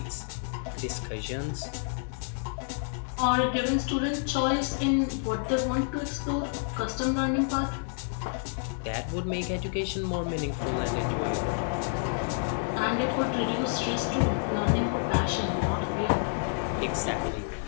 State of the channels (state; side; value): silent; right; 58 dB below the other